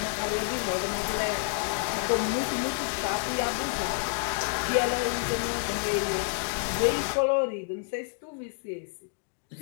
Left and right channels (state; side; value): silent; right; digital silence